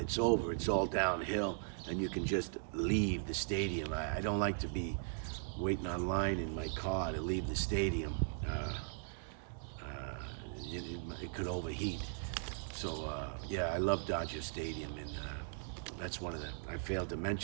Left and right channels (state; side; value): silent; left; digital silence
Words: over, it's all downhill, and you can just leave the stadium. I don't like to be waiting online in my car to leave the stadium. It could overheat. So yeah, I love Dodger Stadium, and that's one of the, I failed to